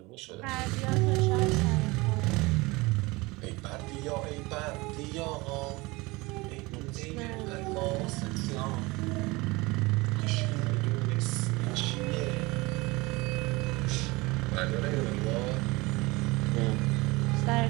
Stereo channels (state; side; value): quieter; left; 23.2 dB